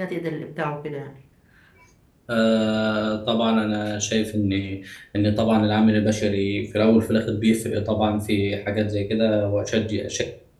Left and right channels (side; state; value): both; identical; correlation 1.00